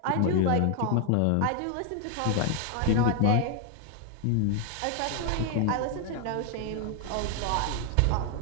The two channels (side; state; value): both; different; correlation 0.00